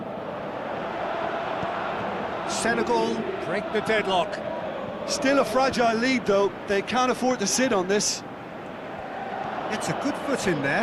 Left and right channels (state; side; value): identical; both; correlation 1.00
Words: Senegal break the deadlock. Still a fragile lead, though. They can't afford to sit on this. It's a good foot in